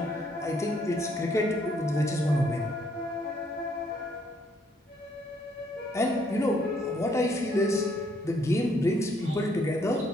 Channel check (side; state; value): both; normal; correlation 0.68